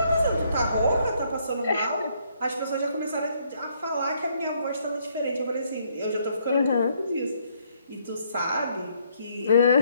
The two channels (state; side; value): inverted; both; correlation -0.69